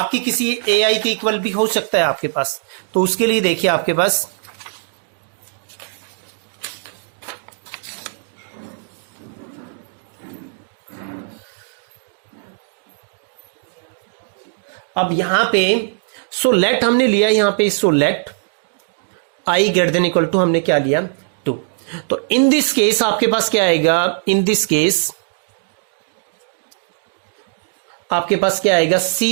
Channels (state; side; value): silent; left; digital silence